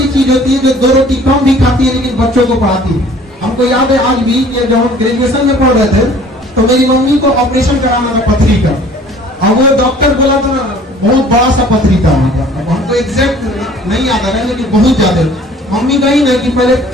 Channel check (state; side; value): normal; both; correlation 0.52